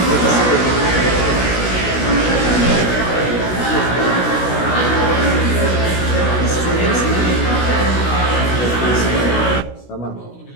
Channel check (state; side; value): late; right; 16 ms